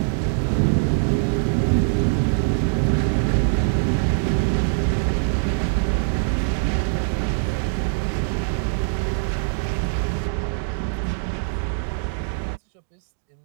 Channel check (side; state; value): left; silent; digital silence